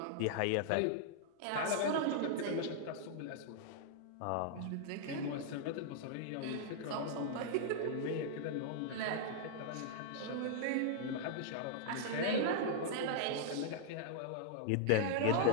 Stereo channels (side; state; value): both; different; correlation -0.01